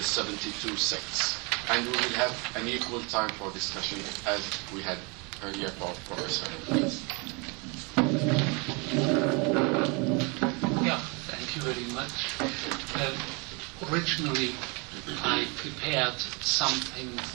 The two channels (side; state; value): left; quieter; 31.0 dB